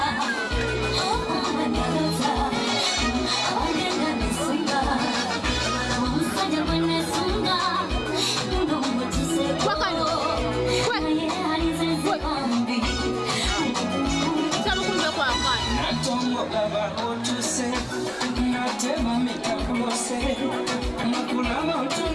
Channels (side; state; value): both; identical; correlation 1.00